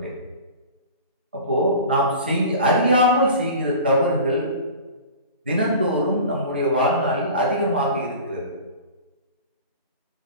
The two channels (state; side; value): inverted; both; correlation -0.38